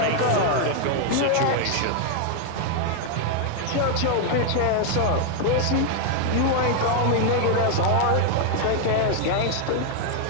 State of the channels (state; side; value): different; both; correlation 0.00